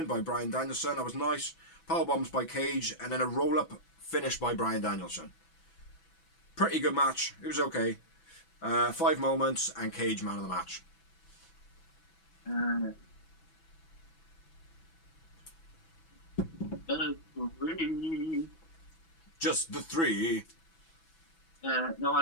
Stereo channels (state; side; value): late; right; 6.0 ms